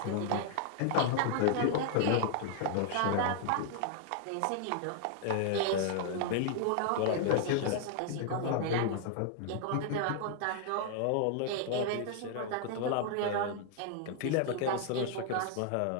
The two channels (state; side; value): different; both; correlation 0.00